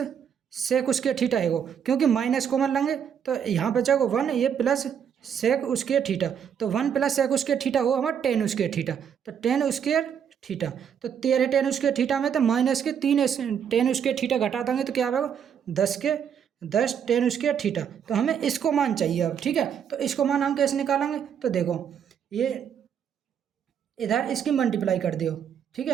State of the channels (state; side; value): quieter; left; 8.1 dB